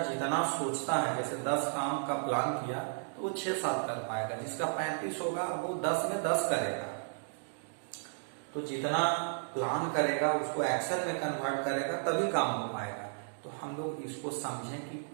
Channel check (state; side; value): silent; left; digital silence